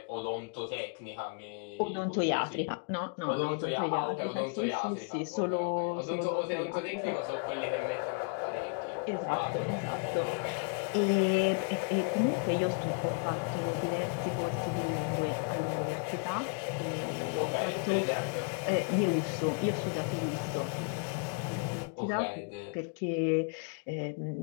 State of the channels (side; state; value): right; quieter; 37.1 dB